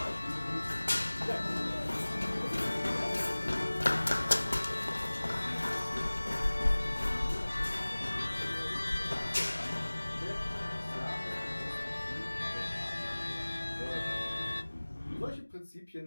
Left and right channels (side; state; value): both; inverted; correlation -1.00